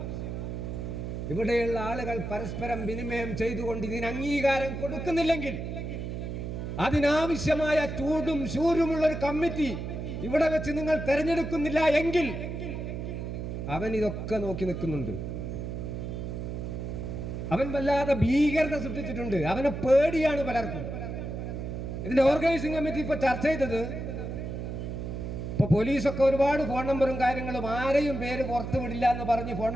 ഇവിടെയുള്ള ആളുകൾ പരസ്പരം വിനിമയം ചെയ്തുകൊണ്ട് ഇതിന് അംഗീകാരം കൊടുക്കുന്നില്ലെങ്കിൽ, അതിനാവശ്യമായ ചൂടും ശൂരുമുള്ള ഒരു കമ്മിറ്റി ഇവിടെ വെച്ച് നിങ്ങൾ തെരഞ്ഞെടുക്കുന്നില്ല എങ്കിൽ അവൻ ഇതൊക്കെ നോക്കി നിൽക്കുന്നുണ്ട്. അവൻ വല്ലാതെ ഭീകരത സൃഷ്ടിച്ചിട്ടുണ്ട്. അവനെ പേടിയാണ് പലർക്കും. ഇതിന്റെ ഓർഗനൈസിംഗ് കമ്മിറ്റി ഇപ്പൊ ചർച്ച ചെയ്തത്, ഇപ്പൊ പോലീസൊക്കെ ഒരുപാട് ഫോൺ നമ്പറും കാര്യങ്ങളും, ആരെയും പേര് പുറത്തു വിടില്ല എന്ന് പറഞ്ഞ് ഫോൺ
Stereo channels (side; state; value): right; noise; hum, 5 dB below the sound